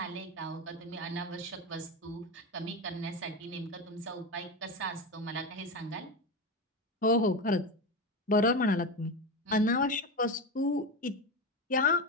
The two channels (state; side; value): normal; both; correlation 0.19